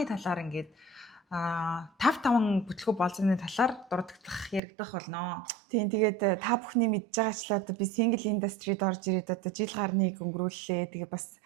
талаар ингээд 5 бүтлгүү болзооны талаар дурддах яригдах болно. Тийм тэгээд та бүхний мэдж байгаачлаа одоо би single industry-д орж ирээд одоо жил гарныг өнгөрүүллээ. Тэгээд бас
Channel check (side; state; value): left; drops out; at 4.6 s